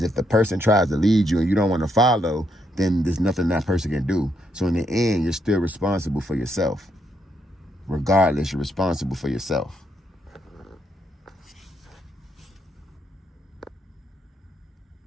if the person tries to lead you and you don't want to follow, then there's nothing that person can do. So in the end, you're still responsible for yourself. Regardless, you're responsible for yourself.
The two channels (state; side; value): normal; both; correlation 0.76